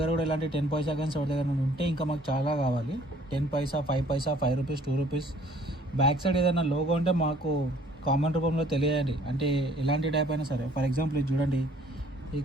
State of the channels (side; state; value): both; normal; correlation 0.57